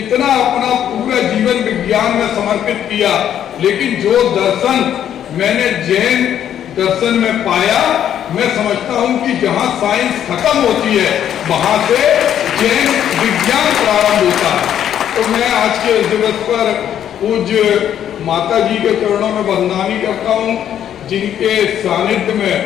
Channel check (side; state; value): right; quieter; 10.1 dB